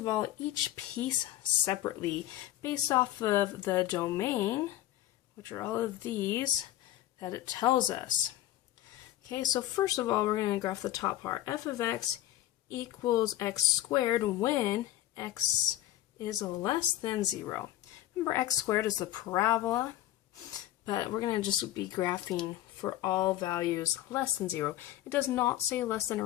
all, each piece separately based off of the domain, which are all of these, that it tells us. Okay, so first of all, we're going to graph the top part. F of x equals x squared when x is less than 0. Remember, x squared is the parabola, but we're going to just be graphing for all values less than 0. It does not say less than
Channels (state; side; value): quieter; right; 14.2 dB